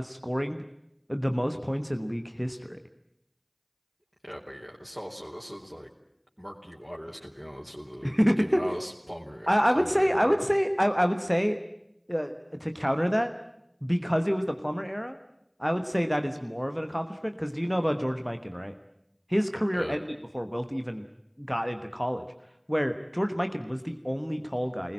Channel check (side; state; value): both; identical; correlation 1.00